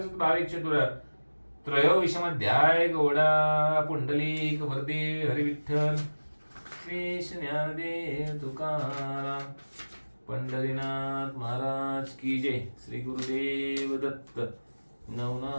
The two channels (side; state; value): both; inverted; correlation -1.00